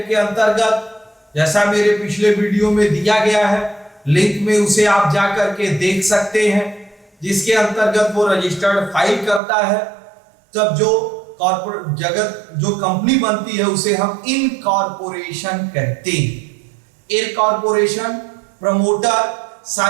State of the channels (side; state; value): left; drops out; at 9.4 s